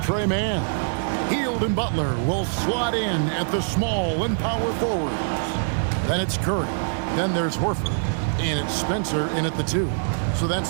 Mann. Hield and Butler will slot in at the small and power forwards. Then it's Curry. Then there's Horford. And it's Spencer in at the 2. So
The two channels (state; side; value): silent; left; 57 dB below the other